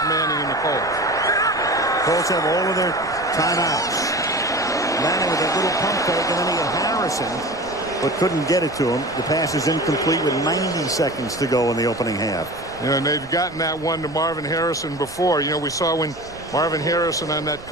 Manning and the Colts. Colts have all of their timeouts. Manning with a little pump fake, and then he had Harrison, but couldn't get it to him. The pass is incomplete with 90 seconds to go in the opening half. You know, and they've gotten that one to Marvin Harrison before. You know, we saw when Marvin Harrison on that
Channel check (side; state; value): right; noise; rumble, 19 dB below the sound